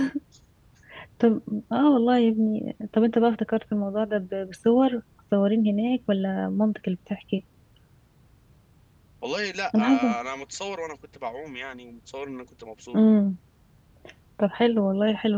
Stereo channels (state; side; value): identical; both; correlation 1.00